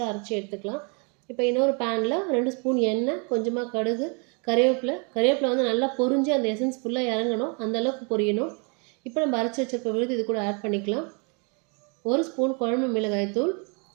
அரைச்சி எடுத்துக்கலாம். இப்போ இன்னொரு பேனில் 2 ஸ்பூன் எண்ணெய், கொஞ்சமாக கடுகு, கருவேப்பிலை நல்லா பொரிஞ்சு அந்த எசன்ஸ் ஃபுல்லாக இறங்கணும், அந்தளவுக்கு பொரியணும். இப்போ நம்ம அரைச்சி வச்சிருக்க விழுது இது கூட ஆட் பண்ணிக்கலாம். 1 ஸ்பூன் குழம்பு மிளகாய்த்தூள்,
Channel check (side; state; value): left; quieter; 35.1 dB